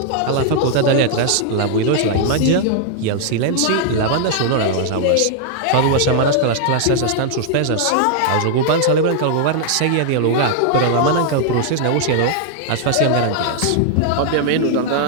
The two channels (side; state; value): both; different; correlation -0.01